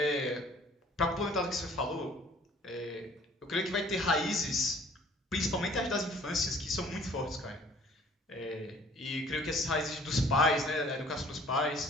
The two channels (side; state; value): both; normal; correlation 0.54